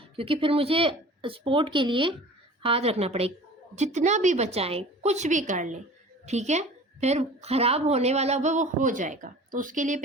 क्योंकि फिर मुझे स्पोर्ट के लिए हाथ रखना पड़ेगा। जितना भी बचाएं, कुछ भी कर लें, ठीक है, फिर ख़राब होने वाला वो हो जाएगा। तो उसके लिए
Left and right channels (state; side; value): normal; both; correlation 0.42